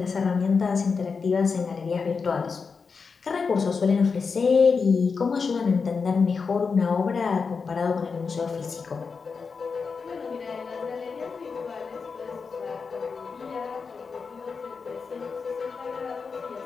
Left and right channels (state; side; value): quieter; right; 5.2 dB